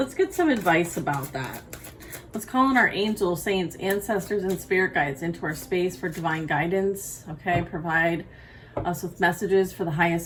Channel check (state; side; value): identical; both; correlation 1.00